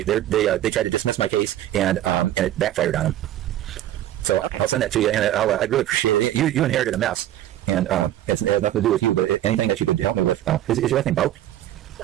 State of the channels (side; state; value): left; quieter; 12.8 dB